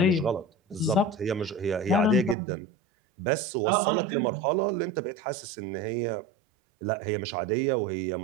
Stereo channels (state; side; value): drops out; left; at 2.4 s